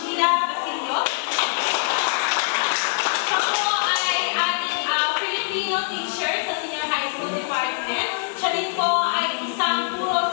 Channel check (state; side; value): silent; right; digital silence